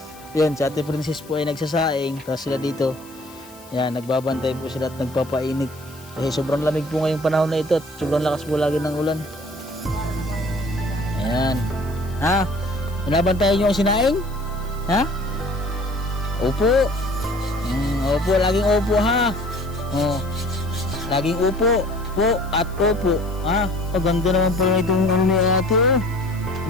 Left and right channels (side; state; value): left; noise; hiss, 22 dB below the sound